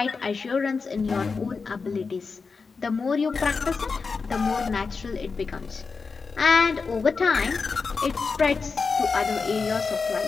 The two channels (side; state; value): right; quieter; 4.7 dB